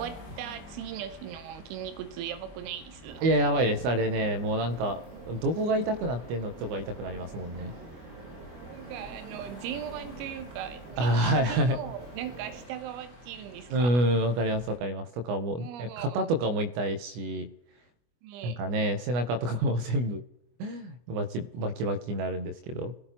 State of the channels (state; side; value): late; left; 25 ms